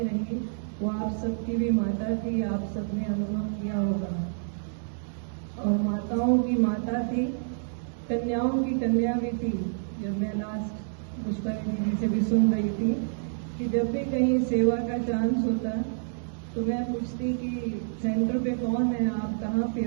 रही, वो आप सबकी भी माता थी। आप सबने अनुभव किया होगा, और माताओं की माता थी, कन्याओं की कन्या भी थी। जब मैं लास्ट पुष्पाली दीदी से भी सुन रही थी कि जब भी कहीं सेवा का चांस होता तो मैं पूछती कि सेंटर पे कौन है, आप कहाँ पे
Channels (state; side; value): silent; left; digital silence